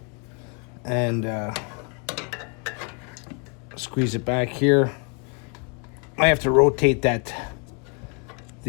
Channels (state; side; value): quieter; right; 35.9 dB